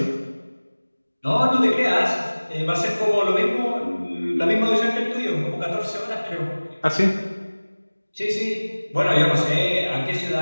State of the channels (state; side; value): inverted; both; correlation -1.00